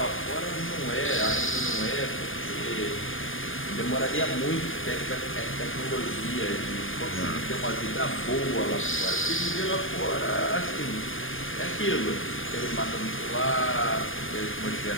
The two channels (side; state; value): right; late; 0.59 ms